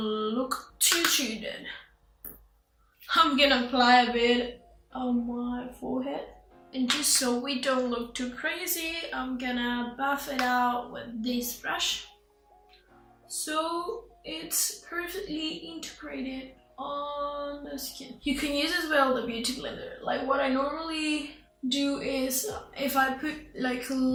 too dead. I'm gonna apply a bit on my forehead. And just so we don't look too crazy, I'm gonna buff it out with this brush. So it's perfectly integrated on the skin. You can use as well the beauty blender. Like what I normally do is if I put like a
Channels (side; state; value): both; identical; correlation 1.00